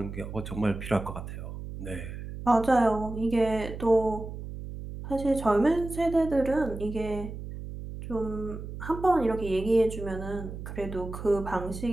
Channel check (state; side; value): noise; right; hum, 9 dB below the sound